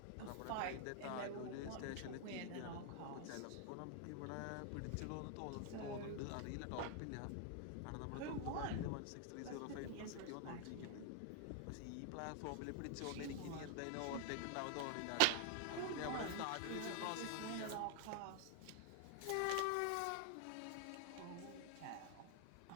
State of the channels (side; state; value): both; different; correlation 0.00